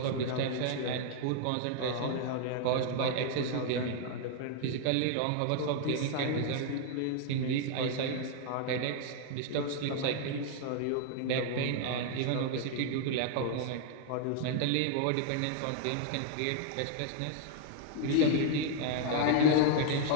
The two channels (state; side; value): different; both; correlation 0.00